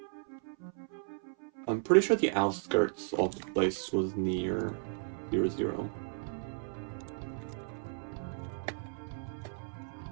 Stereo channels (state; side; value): silent; left; 55 dB below the other